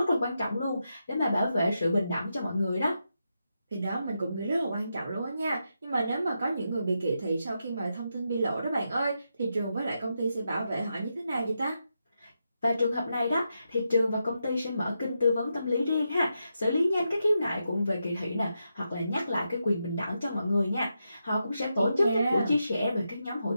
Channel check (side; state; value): both; inverted; correlation -0.85